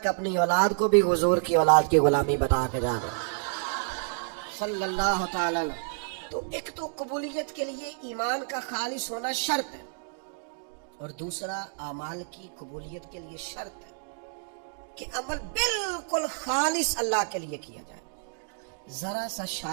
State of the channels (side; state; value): left; silent; digital silence